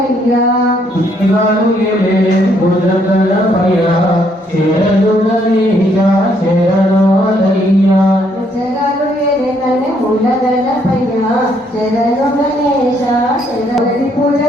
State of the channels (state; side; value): normal; both; correlation 0.70